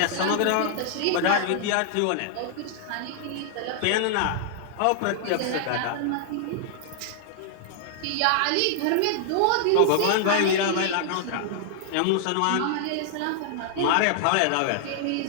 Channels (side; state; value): both; different; correlation -0.01